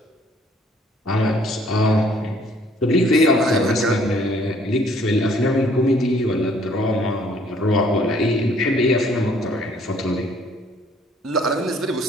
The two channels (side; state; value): both; normal; correlation 0.61